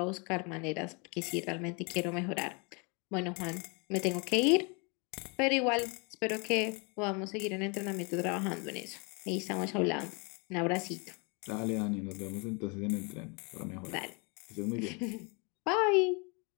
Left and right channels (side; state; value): right; quieter; 32.2 dB